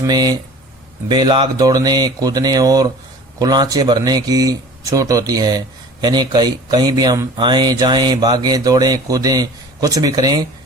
बेलाग दौड़ने, कूदने और कुलांचे भरने की छूट होती है। यानी कहीं भी हम आए जाएं, भागे, दौड़े, कूदें, कुछ भी करें,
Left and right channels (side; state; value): both; normal; correlation 0.43